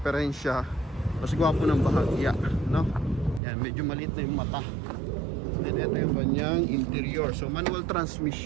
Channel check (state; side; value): drops out; left; at 3.4 s